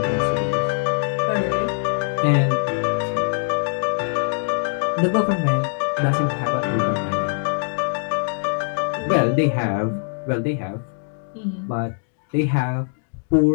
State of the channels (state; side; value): silent; right; digital silence